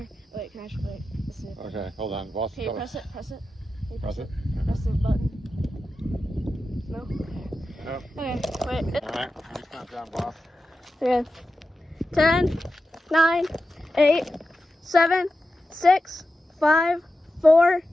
Wait, can I wait? Let's see. Okay, hold on. Boss, Can you press it? Press it? Can you Press it. Press the button. No? Nope. Okay, wait. Alright, just count down, boss. Okay. 10, 9, 8, 7, 6, 5, 4,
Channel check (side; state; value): both; normal; correlation 0.91